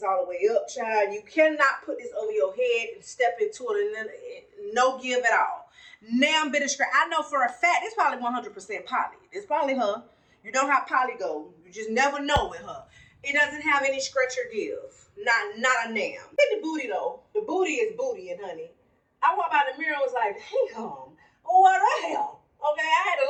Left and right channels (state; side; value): identical; both; correlation 1.00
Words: all the way up, child. You cannot put this over your head and step into it and then no give at all. Now bit of straight. I know for a fact it's probably 100% poly. It's probably her. You know how poly go. You just never know with her. It doesn't have any stretch or give. Not a damn. Look at the booty though. The booty is booty, and honey. I walked by the mirror and was like, damn. Oh, what the hell? Okay, I had to